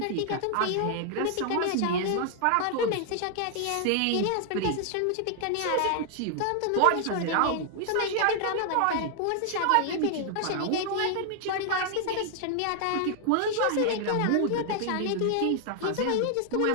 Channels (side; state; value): both; different; correlation 0.00